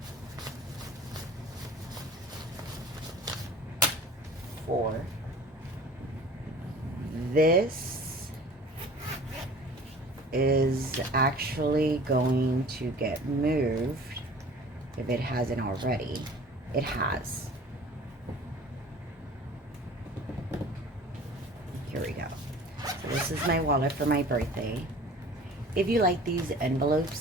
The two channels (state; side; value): normal; both; correlation 0.45